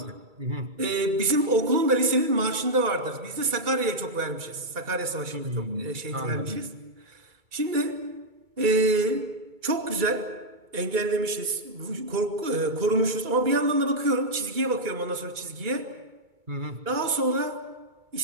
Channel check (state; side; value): late; left; 2.2 ms